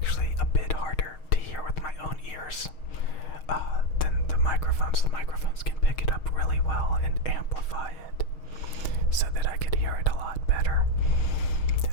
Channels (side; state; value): right; late; 6.4 ms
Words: a bit harder to hear with my own ears than the microphones. The microphones can pick it up really well and amplify it so that I could hear it a lot better